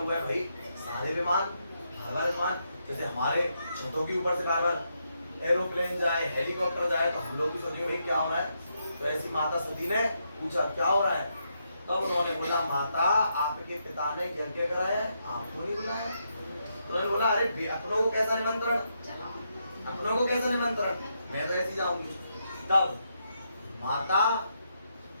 है भाई, सारे विमान बार विमान, जैसे हमारे छतों के ऊपर से बार बार एरोप्लेन जाए, हेलीकॉप्टर जाए, तो हम लोग भी सोचेंगे भाई क्या हो रहा है। तो ऐसी माता सती ने पूछा क्या हो रहा है, तब उन्होंने बोला माता आपके पिता ने यज्ञ कराया, आपको नहीं बुलाया। उन्होंने बोला अरे अपनों को कैसा निमंत्रण, अपनों को कैसा निमंत्रण, मैं तो ऐसी जाऊंगी। तब माता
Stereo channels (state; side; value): inverted; both; correlation -0.80